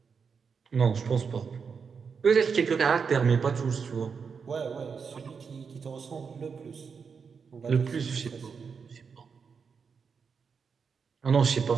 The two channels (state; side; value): quieter; left; 5.9 dB